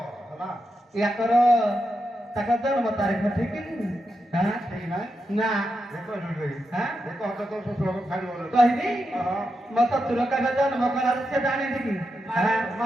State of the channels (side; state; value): both; normal; correlation 0.86